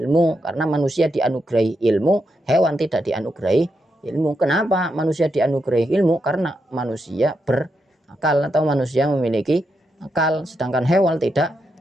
Karena manusia dianugerahi ilmu, hewan tidak dianugerahi ilmu. Kenapa manusia dianugerahi ilmu? Karena manusia berakal atau manusia memiliki akal, sedangkan hewan tidak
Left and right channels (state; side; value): normal; both; correlation 0.83